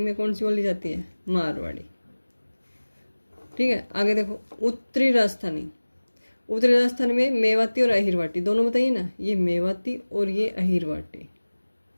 में कौन सी बोली जाती है? मारवाड़ी। ठीक है, आगे देखो उत्तरी राजस्थानी। उत्तरी राजस्थान में मेवाती और अहिरवाटी दोनों बताइए ना, ये मेवाती और ये अहिरवाटी।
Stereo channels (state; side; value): inverted; both; correlation -1.00